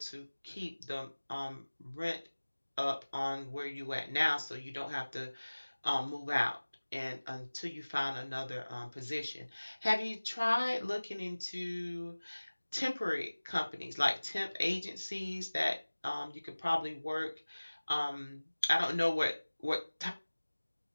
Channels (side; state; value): both; inverted; correlation -1.00